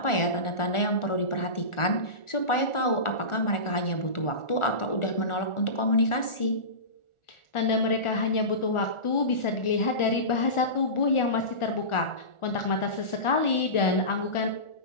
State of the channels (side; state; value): right; late; 1.4 ms